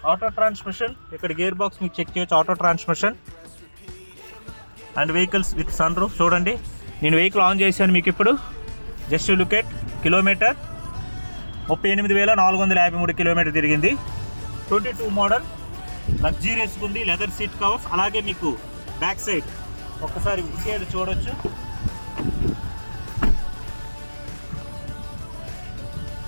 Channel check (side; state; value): both; inverted; correlation -1.00